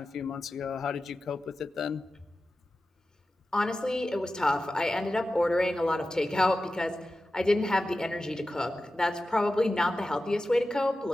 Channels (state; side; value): normal; both; correlation 0.94